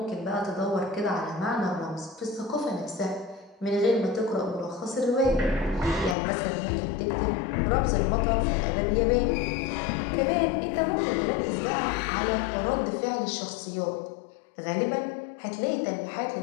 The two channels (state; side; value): drops out; right; at 6.2 s